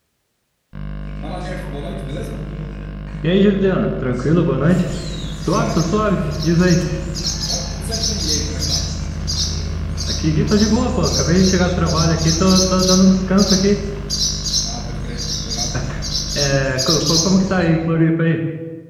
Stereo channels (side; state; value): both; identical; correlation 1.00